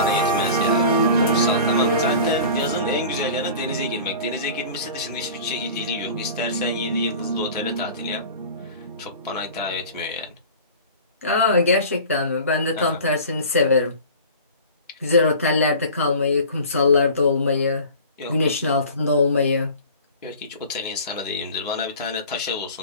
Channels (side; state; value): both; inverted; correlation -0.40